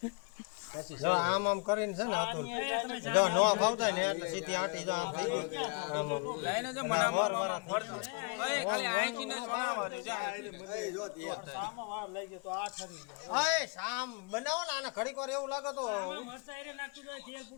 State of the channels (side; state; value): right; quieter; 33.1 dB